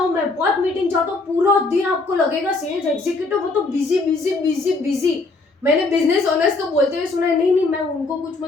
मैं बहुत मीटिंग जाता हूँ, पूरा दिन आपको लगेगा सेल्स एग्जीक्यूटिव वो तो बिजी बिजी बिजी बिजी। मैंने बिजनेस ओनर्स को बोलते हुए सुना है, नहीं नहीं मैं उनको कुछ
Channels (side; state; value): right; quieter; 3.5 dB